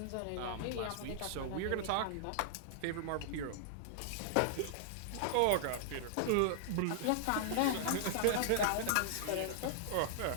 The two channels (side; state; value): both; different; correlation -0.01